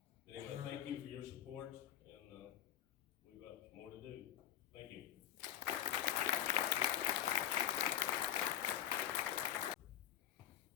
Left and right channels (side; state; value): right; quieter; 11.1 dB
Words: anyway, thank you for your support, and we've got more to do. Thank you.